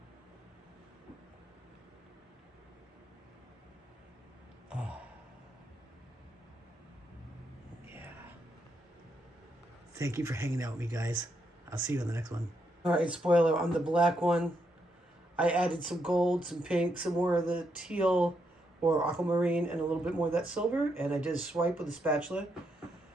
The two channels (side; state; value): both; normal; correlation 0.79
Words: Oh. Yeah. Thank you for hanging out with me, guys. I'll see you on the next one. All right, spoiler on the black one. I added some gold, some pink, some more of the teal or aquamarine, and a little bit more of that silver. And I did a swipe with a spatula.